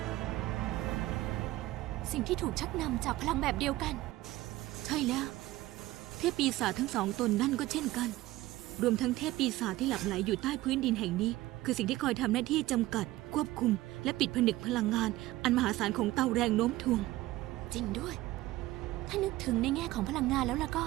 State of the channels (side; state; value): left; quieter; 17.2 dB